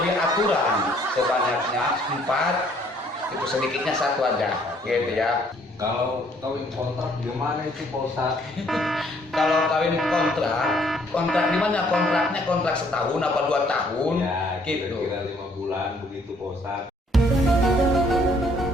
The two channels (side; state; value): both; normal; correlation 0.63